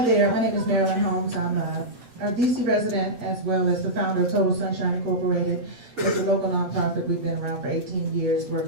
there, my name is Marilyn Holmes. I'm a DC resident as well as the founder of Total Sunshine Incorporated. It's a local nonprofit. We've been around for 18 years,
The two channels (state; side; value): late; left; 8.7 ms